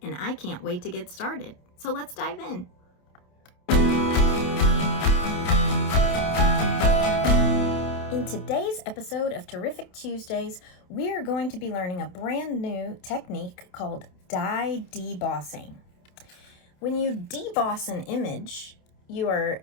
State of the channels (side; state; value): right; late; 28 ms